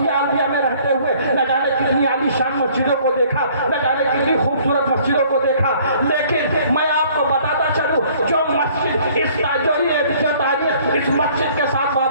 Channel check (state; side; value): inverted; both; correlation -0.57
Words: عربیہ میں رہتے ہوئے نہ جانے کتنی عالی شان مسجدوں کو دیکھا, نہ جانے کتنی خوبصورت مسجدوں کو دیکھا. لیکن میں آپ کو بتاتا چلوں جو مسجد اس تاریخ اس مسجد کے ساتھ